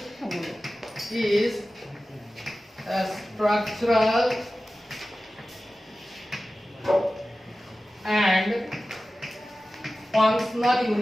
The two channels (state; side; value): normal; both; correlation 0.95